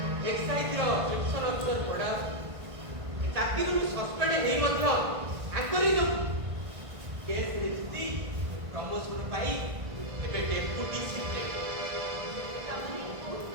ଏକ୍ସାଇଜର ସେକ୍ସନ ଅଫିସର ପଡ଼ା ଚାକିରିରୁ ସସ୍ପେଣ୍ଡ ହେଇ ମଧ୍ୟ ଆଙ୍କରି କେସ୍ରେ ଜିତି ପ୍ରମୋସନ ପାଇ ଏବେ ଡେପୁଟି ସିକ୍ରେଟାରୀ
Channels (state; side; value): late; left; 1.5 ms